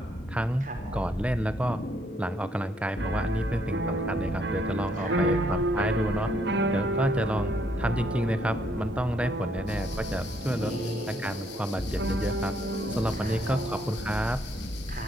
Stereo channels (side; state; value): both; normal; correlation 0.71